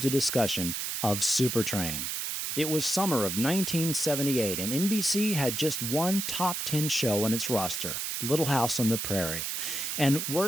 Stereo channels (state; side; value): noise; right; hiss, 3 dB below the sound